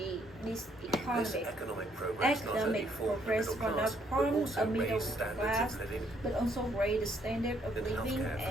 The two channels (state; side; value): normal; both; correlation 0.69